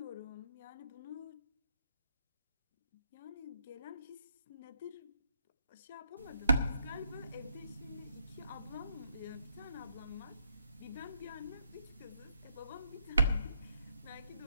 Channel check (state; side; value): inverted; both; correlation -0.75